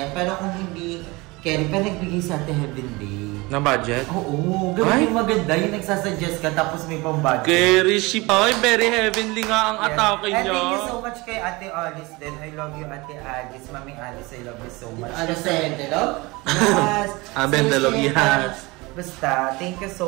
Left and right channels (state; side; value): quieter; left; 23.7 dB